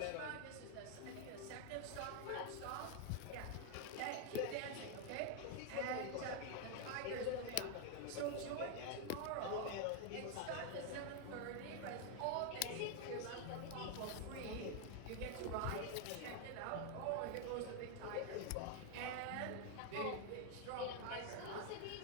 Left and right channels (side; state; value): both; different; correlation 0.00